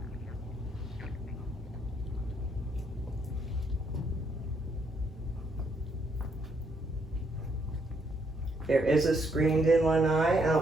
There is a screened-in lanai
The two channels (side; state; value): both; normal; correlation 0.73